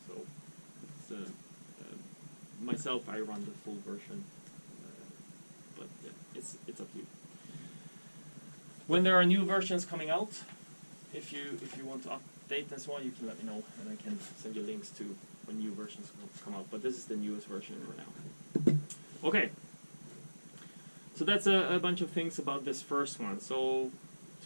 So it's, myself, I run the full version, but yeah, it's up to you. When there are new versions coming out, if you want to update and so on, you can let me know, and I can send you links to when new versions come out. But this is the newest version for now. Okay. So that's a bunch of things about this first one. So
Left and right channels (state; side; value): inverted; both; correlation -1.00